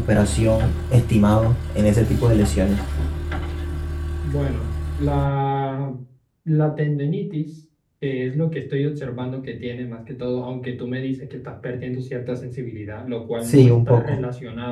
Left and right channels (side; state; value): both; identical; correlation 1.00